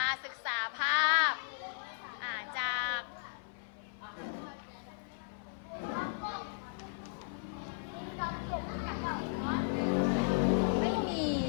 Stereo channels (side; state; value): right; silent; 54 dB below the other